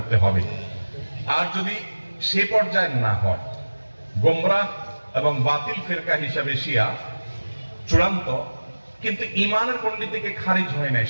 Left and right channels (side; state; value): both; inverted; correlation -1.00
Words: হবে। আর যদি সে পর্যায়ে না হয়, গোমরাহ এবং বাতিল ফেরকা হিসাবে শিয়া চূড়ান্ত, কিন্তু ইমানের গণ্ডি থেকে খারিজ হয় নাই,